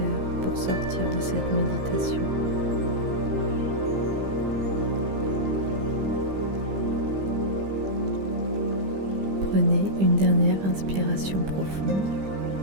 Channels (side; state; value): left; late; 15 ms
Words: pour sortir de cette méditation. Prenez une dernière inspiration profonde